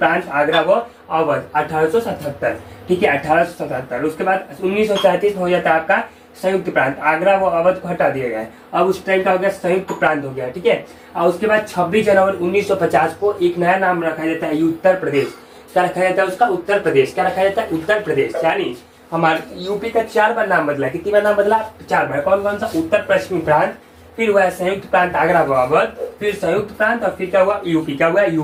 आगरा व अवध 1877। ठीक है, 1877। उसके बाद 1937 में हो जाता है आपका संयुक्त प्रांत। आगरा व अवध को हटा दिया गया। अब उस टाइम का हो गया संयुक्त प्रांत हो गया। ठीक है, और उसके बाद 26 जनवरी 1950 को एक नया नाम रखा जाता है उत्तर प्रदेश। क्या रखा जाता है उसका? उत्तर प्रदेश। क्या रखा जाता है? उत्तर प्रदेश। यानी हमारे यूपी का 4 बार नाम बदला। कितनी बार नाम बदला? 4 बार। कौन कौन सा? उत्तर पश्चिमी प्रांत, फिर हुआ संयुक्त प्रांत आगरा व अवध, फिर संयुक्त प्रांत और फिर क्या हुआ? यूपी। क्या हुआ?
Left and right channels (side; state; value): both; identical; correlation 1.00